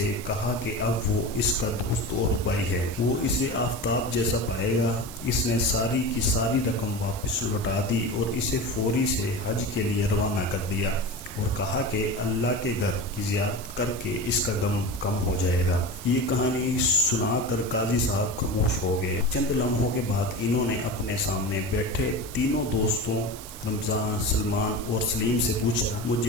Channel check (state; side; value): noise; right; hiss, 14 dB below the sound